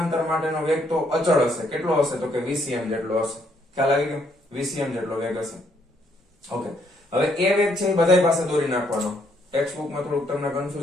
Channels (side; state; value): both; normal; correlation 0.71